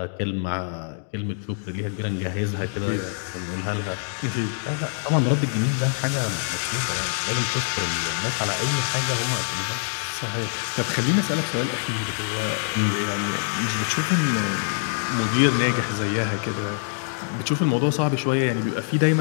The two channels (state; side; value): silent; right; digital silence